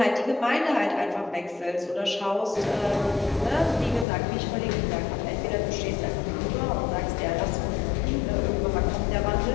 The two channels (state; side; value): drops out; right; at 4.0 s